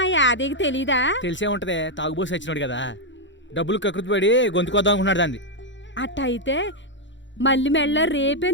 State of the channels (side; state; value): right; late; 0.54 ms